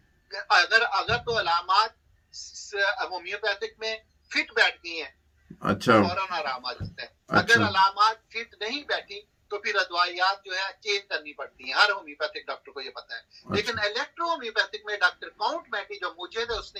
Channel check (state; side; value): identical; both; correlation 1.00